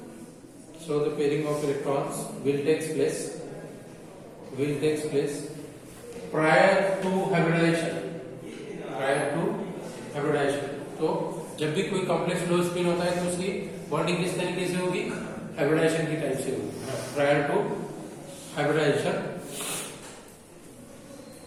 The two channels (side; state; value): both; identical; correlation 1.00